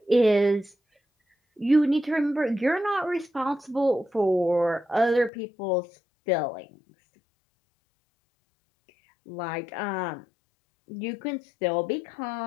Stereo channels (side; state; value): right; drops out; at 5.3 s